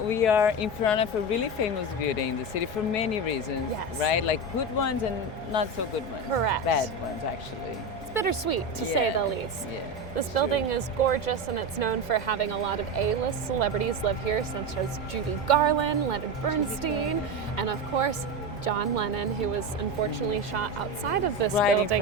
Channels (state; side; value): normal; both; correlation 0.19